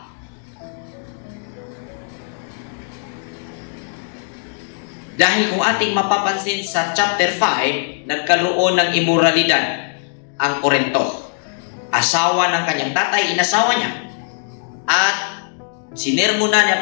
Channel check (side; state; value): right; silent; digital silence